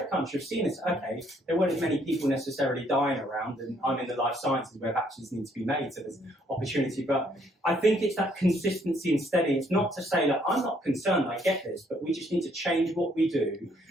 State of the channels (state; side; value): normal; both; correlation 0.67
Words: crunch. I've seen this. Okay, there weren't as many people necessarily dying around, and I'm in the life sciences where vaccines need to be made, so there's opportunity. But I think it's that consistency and steady. It's not to say that I'm not concerned, I get this, but we just need to change what we do.